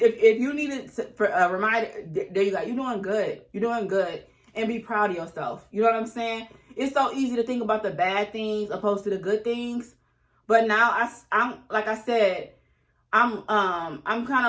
you needed for a reminder, there you go. You're doing good. You're doing good. And be proud of yourself. You know what I'm saying? It's so easy to think about the bad things opposed to the good things. But now I'm like I said, I'm kind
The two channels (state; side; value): identical; both; correlation 1.00